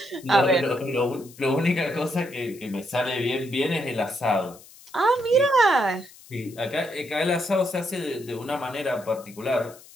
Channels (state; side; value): noise; left; hiss, 22 dB below the sound